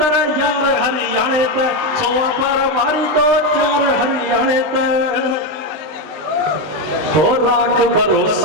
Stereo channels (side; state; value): left; late; 20 ms